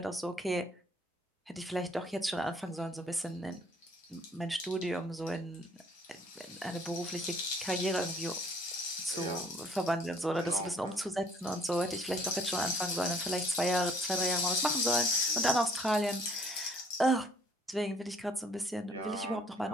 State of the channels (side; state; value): both; normal; correlation 0.60